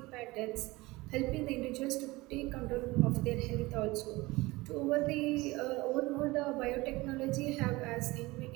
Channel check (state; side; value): quieter; left; 21.3 dB